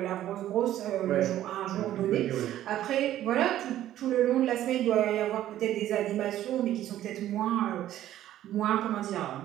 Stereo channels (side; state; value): left; quieter; 12.8 dB